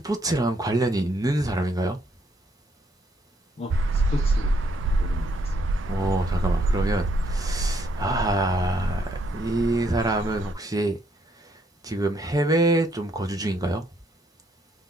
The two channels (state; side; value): normal; both; correlation 0.71